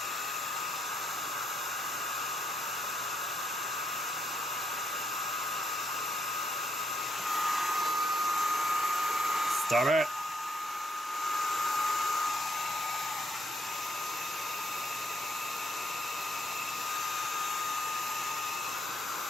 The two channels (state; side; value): normal; both; correlation 0.74